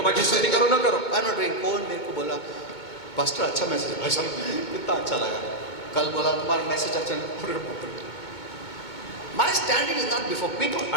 माझी स्तुती करो न करो. I'm not doing. कौन मेरे को बोला पास्टर अच्छा मैसेज भाई साहब कितना अच्छा लगा. कल बोला तुम्हारा मैसेज अच्छा नहीं. My standing is not before people.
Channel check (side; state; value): right; late; 2.2 ms